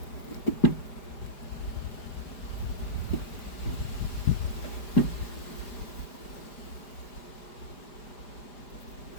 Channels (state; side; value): late; right; 4.9 ms